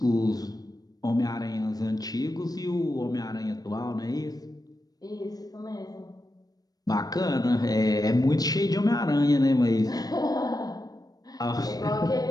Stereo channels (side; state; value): right; late; 0.18 ms